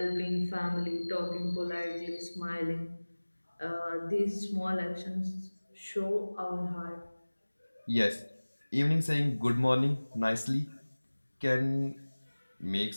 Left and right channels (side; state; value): both; inverted; correlation -1.00